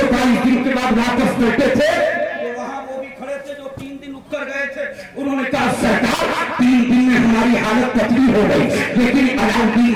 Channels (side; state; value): both; identical; correlation 1.00